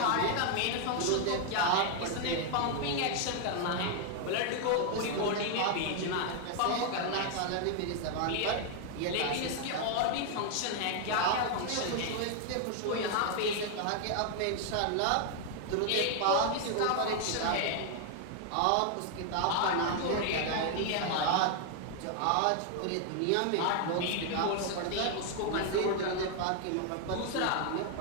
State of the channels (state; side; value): different; both; correlation 0.00